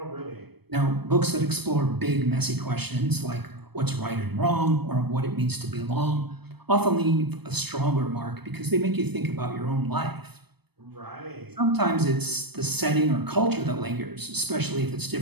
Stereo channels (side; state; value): left; late; 0.97 ms